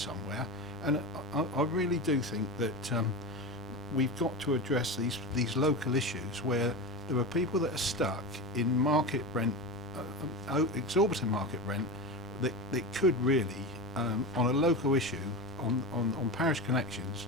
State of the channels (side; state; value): left; noise; rumble, 21 dB below the sound